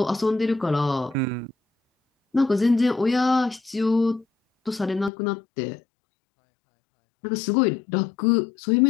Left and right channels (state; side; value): drops out; right; at 5.1 s